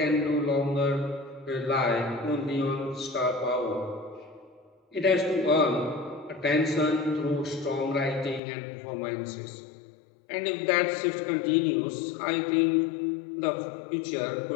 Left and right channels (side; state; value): right; drops out; at 8.4 s